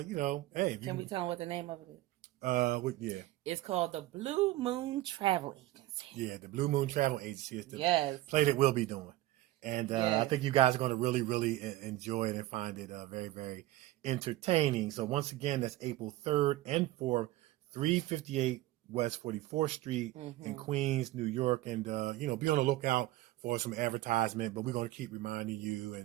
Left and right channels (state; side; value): quieter; left; 16.8 dB